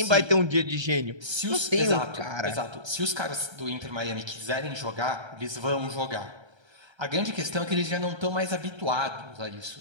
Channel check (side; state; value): left; late; 1.3 ms